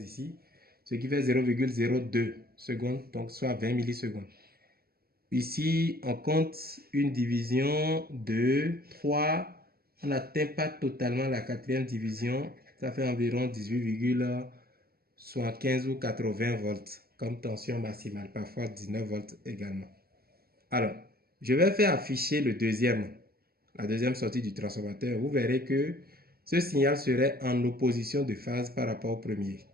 ce qui fait 0,02 secondes, donc soit 20 millisecondes. Ici, on compte une division de 3. On n'atteint pas totalement la quatrième division. Ça fait environ 18,75 ou 80 volts comme tension maximale. Parfois 19 volts également. Alors, je vais faire afficher la deuxième sortie du transformateur. Vous verrez que ce signal serait en opposition de phase par rapport au premier.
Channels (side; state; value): left; late; 0.44 ms